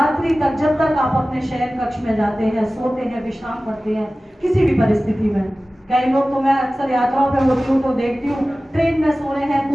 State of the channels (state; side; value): normal; both; correlation 0.97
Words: तक, जब तक आप अपने शयन कक्ष में जाते हैं, सोते हैं, विश्राम करते हैं, किसी भी परिस्थिति में, कई लोग तो मैं अक्सर यात्राओं पे होती हूँ तो देखती हूँ ट्रेन में सो रहे हैं,